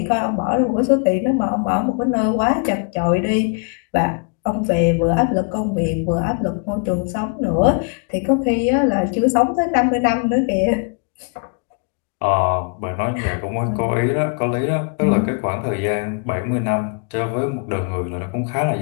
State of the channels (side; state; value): right; quieter; 38.5 dB